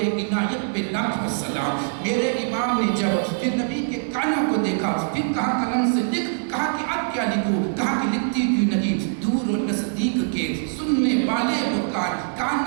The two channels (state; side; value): silent; left; digital silence